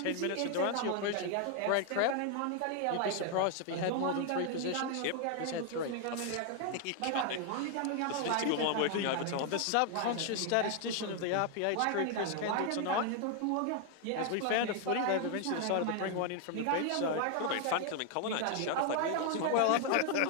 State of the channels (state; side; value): different; both; correlation 0.00